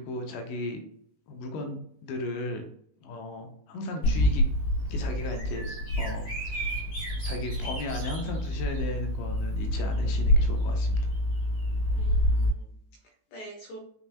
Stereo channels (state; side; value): late; right; 19 ms